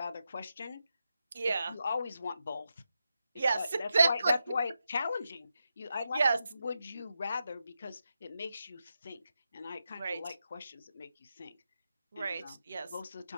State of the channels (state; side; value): inverted; both; correlation -0.87